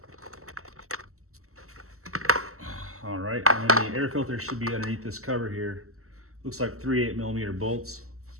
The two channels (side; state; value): left; late; 0.63 ms